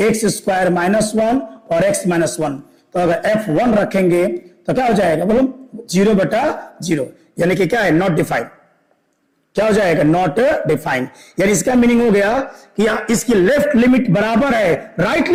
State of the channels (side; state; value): both; identical; correlation 1.00